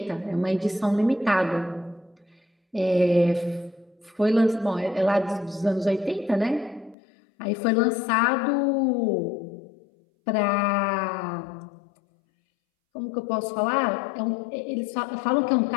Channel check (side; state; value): right; drops out; at 7.0 s